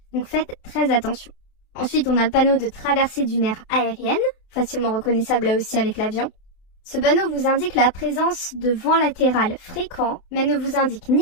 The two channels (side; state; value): right; late; 28 ms